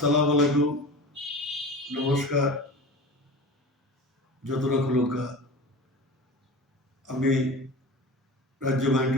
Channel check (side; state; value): both; normal; correlation 0.33